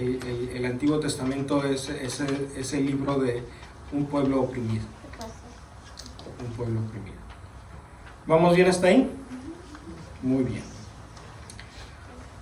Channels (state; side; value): identical; both; correlation 1.00